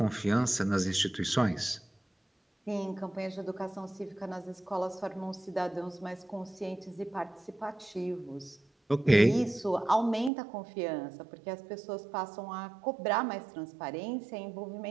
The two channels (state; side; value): drops out; left; at 10.3 s